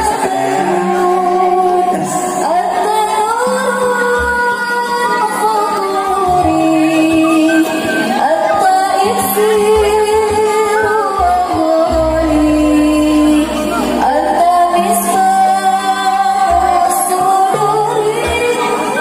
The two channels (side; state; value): both; identical; correlation 1.00